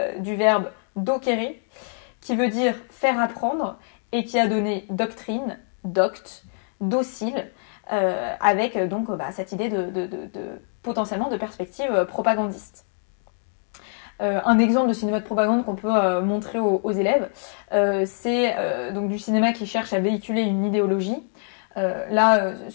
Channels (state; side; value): silent; right; digital silence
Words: du verbe docere, qui veut dire faire apprendre, et qui a donné doctrine, doct, docile, avec donc cette idée potentiellement de perspective propagandiste. Un exemple de cinéma de propagande qu'on peut montrer aux élèves, c'est donc du cinéma qui cherche à véhiculer une idéologie.